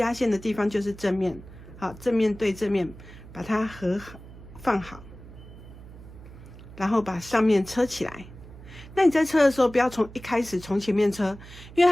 线的地方就是正面，好，正面对正面，把它放好，然后把上面车起来。那你在车的时候，不要一开始从前面车，因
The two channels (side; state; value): right; noise; hum, 17 dB below the sound